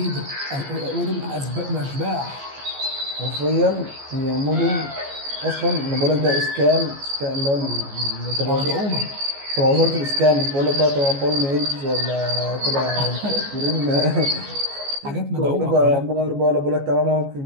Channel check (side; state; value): left; late; 14 ms